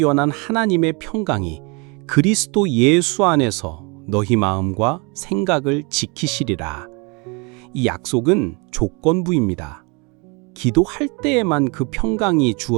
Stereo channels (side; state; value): left; quieter; 30.5 dB